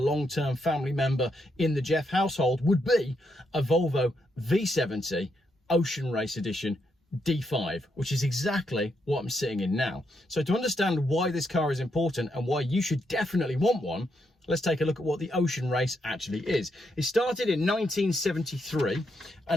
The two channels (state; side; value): normal; both; correlation 0.79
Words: family member in the Geoff household would be a Volvo V70 Ocean Race Edition D5, which is exactly what I'm sitting in now. So to understand why this car is important and why you should definitely want one, let's take a look at what the Ocean Race actually is. It started in 1973